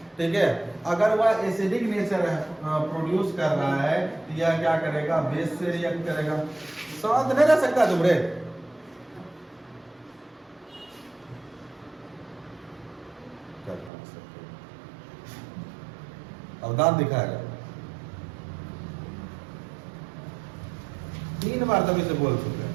ठीक है? अगर वह एसिडिक नेचर प्रोड्यूस कर रहा है तो यह क्या करेगा? बेस से रिएक्ट करेगा। शांत नहीं रह सकता तुम रे। अब दांत दिखाएगा। 3 बार तभी से बोल चुके हैं।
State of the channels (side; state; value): left; drops out; at 13.9 s